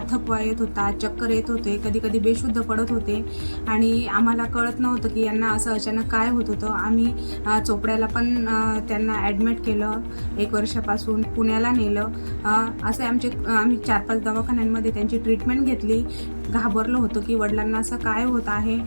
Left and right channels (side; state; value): both; inverted; correlation -1.00